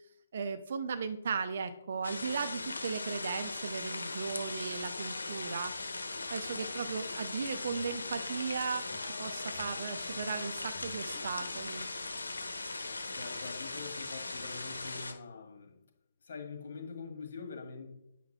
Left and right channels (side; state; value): both; inverted; correlation -0.81